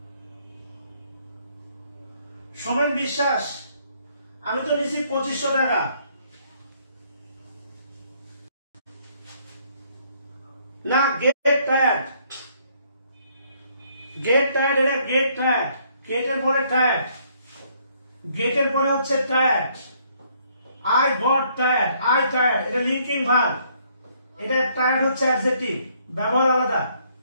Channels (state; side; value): inverted; both; correlation -0.67